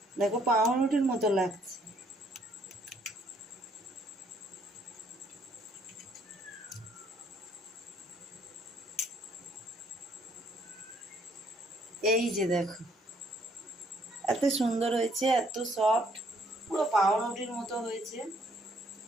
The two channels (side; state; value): both; normal; correlation 0.66